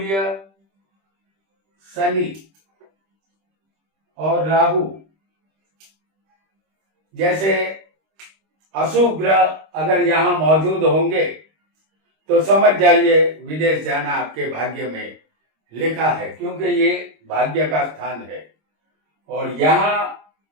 शनि और राहु जैसे अशुभ ग्रह अगर यहां मौजूद होंगे तो समझ जाइए विदेश जाना आपके भाग्य में लिखा है, क्योंकि ये भाग्य का स्थान है। और यहाँ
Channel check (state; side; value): late; left; 26 ms